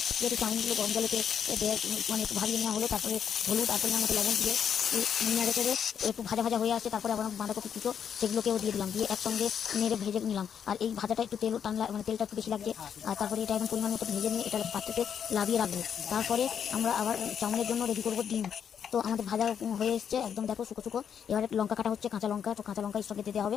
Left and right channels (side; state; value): right; quieter; 8.0 dB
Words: যেহেতু চাউমিনগুলো গরম জলেতে মানে একটু ভাবিয়ে নেওয়া হলো, তারপরে হলুদ আর পরিমাণ মতো লবণ দিয়ে নেড়ে চেড়ে একটু ভাজা ভাজা হয়ে আসছে। তারপরে আবার বাঁধাকপি কুচো সেগুলোকেও দিয়ে দিলাম, দিয়ে একসঙ্গে নেড়ে ভেজে নিলাম। আর এই ভাজাটা একটু তেল টান, মানে তেলটা একটু বেশি লাগছে। আর তারপরে এটা এখন পরিমাণ মতো ভেজে নিয়ে এটা পাত্রতে লাভিয়ে রাখবো। তারপরে আমরা আবার চাউমিনের জন্য রেডি করবো ডিম। তো আমাদের ভাজা হয়ে এসছে একদম, দেখো শুকো শুকো। এবারে লঙ্কা কাটা হচ্ছে, কাঁচা লঙ্কা। তো কাঁচা লঙ্কা এর সঙ্গে দিতে